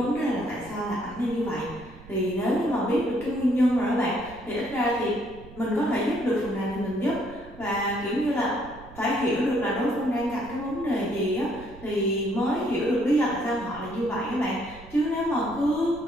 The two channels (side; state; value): right; noise; rumble, 18 dB below the sound